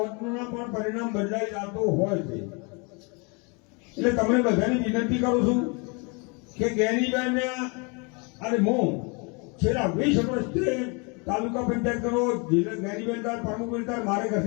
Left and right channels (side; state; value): right; quieter; 31.9 dB